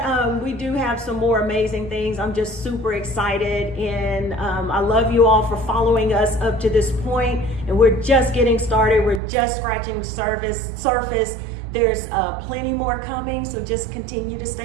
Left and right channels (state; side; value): drops out; left; at 9.2 s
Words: we do have some more amazing things. I'm just super excited, and I love you all for following us up to this point. And we're just getting started. We're just scratching the surface. There's plenty more coming, so just continue to